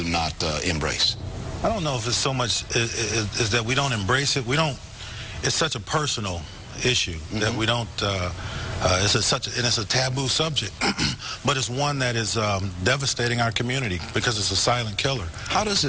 not embrace? I don't know if it's so much is that we don't embrace it. It's such a personal issue that we don't. It's a taboo subject, but it's one that is devastating our community because it's a silent killer. How does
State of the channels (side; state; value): both; identical; correlation 1.00